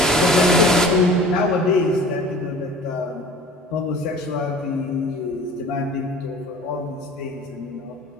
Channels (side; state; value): both; normal; correlation 0.43